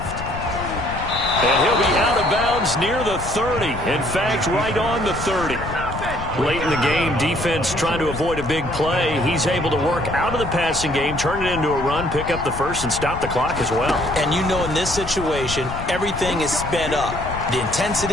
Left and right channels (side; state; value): left; noise; rumble, 9 dB below the sound